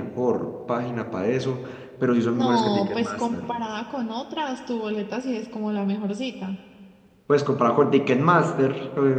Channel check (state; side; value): identical; both; correlation 1.00